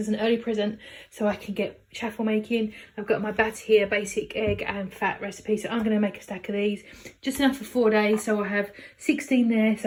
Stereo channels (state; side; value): identical; both; correlation 1.00